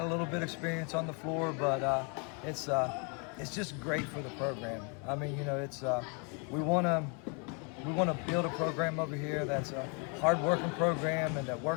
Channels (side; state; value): right; quieter; 36.2 dB